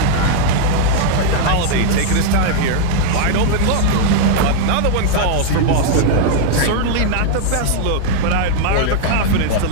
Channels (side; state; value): both; different; correlation 0.00